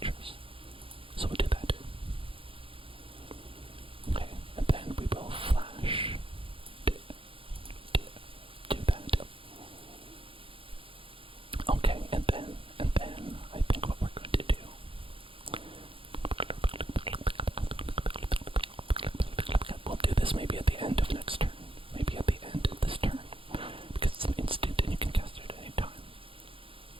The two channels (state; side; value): late; left; 0.26 ms